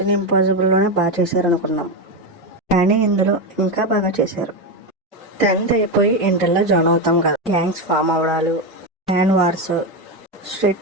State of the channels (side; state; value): both; normal; correlation 0.12